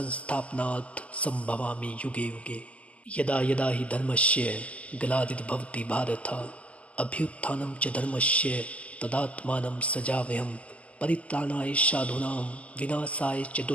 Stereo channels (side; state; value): right; late; 0.064 ms